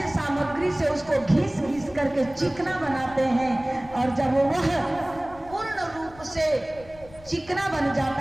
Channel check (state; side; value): noise; left; rumble, 21 dB below the sound